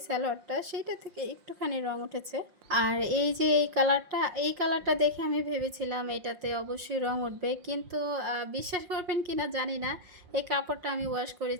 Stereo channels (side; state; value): left; late; 5.7 ms